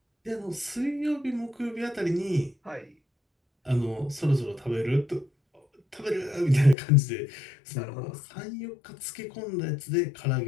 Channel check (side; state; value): right; drops out; at 6.8 s